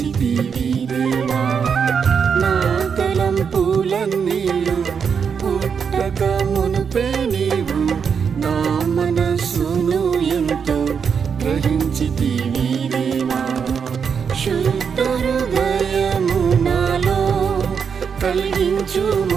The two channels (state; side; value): quieter; left; 6.6 dB